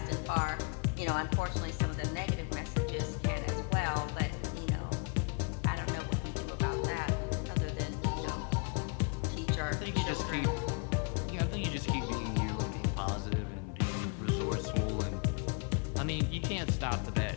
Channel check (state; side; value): quieter; right; 35.7 dB